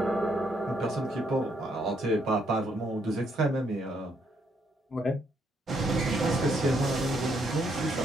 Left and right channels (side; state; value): both; normal; correlation 0.73